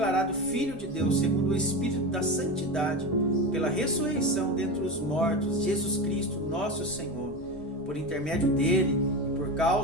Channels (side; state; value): both; normal; correlation 0.23